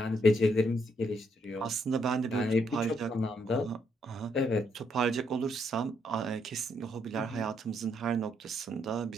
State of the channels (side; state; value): both; normal; correlation 0.74